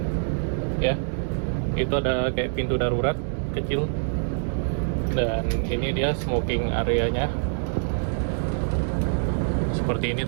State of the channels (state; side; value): silent; left; digital silence